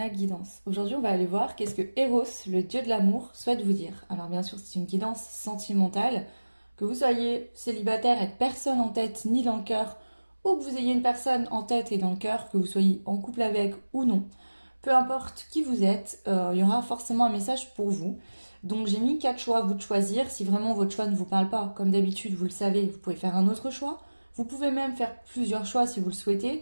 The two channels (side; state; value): both; inverted; correlation -1.00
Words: Guidance. Aujourd'hui, on va aller voir qu'est-ce que Eros, le dieu de l'amour, souhaite vous dire. Alors bien sûr, c'est une guidance sentimentale. Que vous soyez célibataire avec personne en tête ni dans le cœur, ou que vous ayez une personne en tête et dans le cœur, que vous soyez en couple avec ou non. Peu importe qui vous êtes, il y aura forcément un message pour vous. Donc j'ai mis 4 choix à vous de choisir. Si vraiment votre choix ne vous parle pas, comme d'habitude, vous le savez, vous pouvez faire un autre choix. Vous pouvez même faire plusieurs choix si vous le